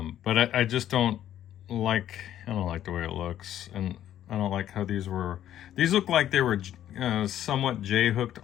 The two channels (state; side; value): quieter; right; 11.5 dB